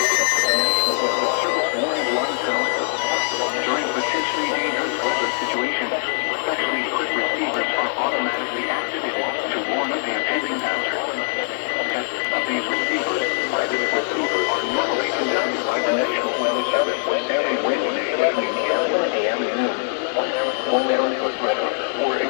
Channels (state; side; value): silent; right; digital silence